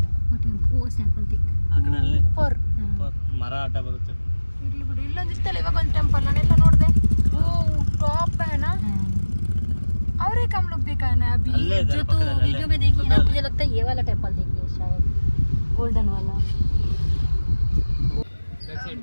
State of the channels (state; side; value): inverted; both; correlation -1.00